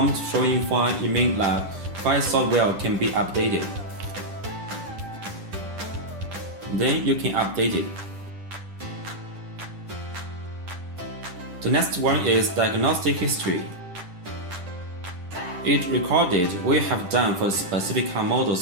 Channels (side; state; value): left; late; 10 ms